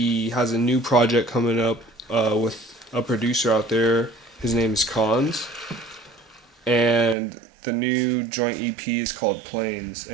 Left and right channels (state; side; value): drops out; left; at 7.2 s